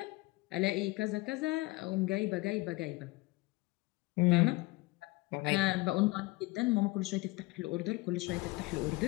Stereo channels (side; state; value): right; quieter; 22.4 dB